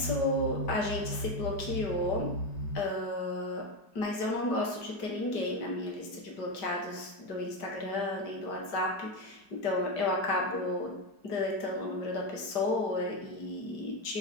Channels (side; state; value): right; late; 5.0 ms